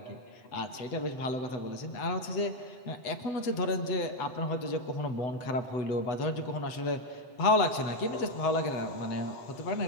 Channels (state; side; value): late; right; 8.0 ms